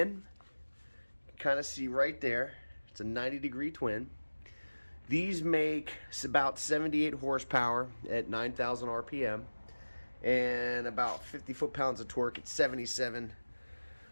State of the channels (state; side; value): inverted; both; correlation -1.00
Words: You can kind of see right there. It's a 90-degree twin. These make about 78 horsepower at 9,000 RPM and about 50 foot-pounds of torque at 7,700